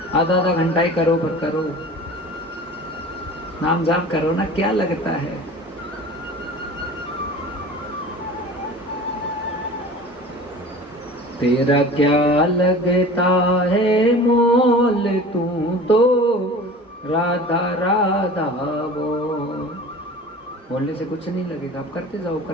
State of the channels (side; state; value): both; normal; correlation 0.40